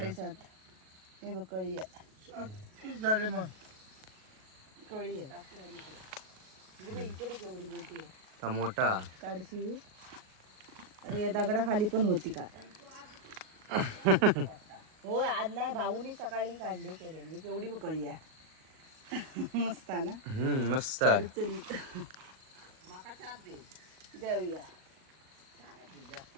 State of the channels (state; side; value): late; left; 38 ms